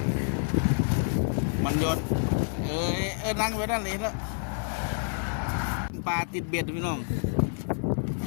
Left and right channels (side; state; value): right; silent; 59 dB below the other